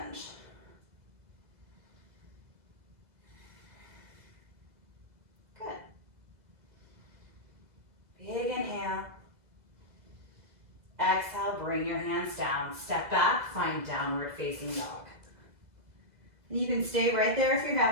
Good. Big inhale. Exhale, bring your hands down. Step back, find downward facing dog. And you can stay right there if you're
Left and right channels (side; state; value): left; late; 2.0 ms